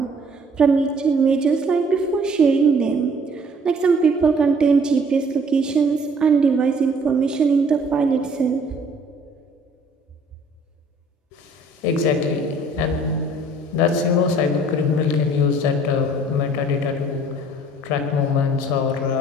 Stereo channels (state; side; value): normal; both; correlation 0.56